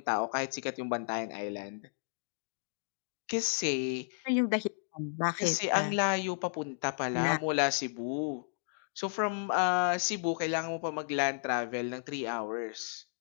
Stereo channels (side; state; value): right; silent; digital silence